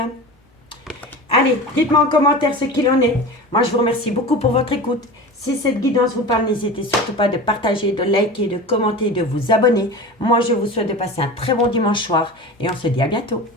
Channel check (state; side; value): normal; both; correlation 0.32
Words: Allez, dites-moi en commentaire ce qu'il en est. Moi, je vous remercie beaucoup pour votre écoute. Si cette guidance vous parle, n'hésitez surtout pas de partager, de liker, de commenter, de vous abonner. Moi, je vous souhaite de passer un très bon dimanche soir et on se dit à bientôt.